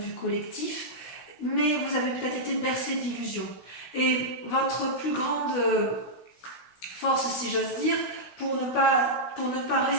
collectif, mais vous avez peut-être été bercé d'illusions. Et votre plus grande force, si j'ose dire, pour ne pas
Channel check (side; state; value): right; late; 16 ms